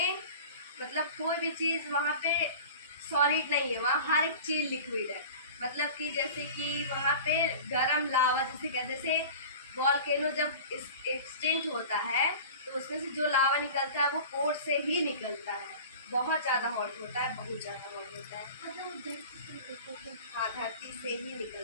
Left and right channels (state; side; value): inverted; both; correlation -0.38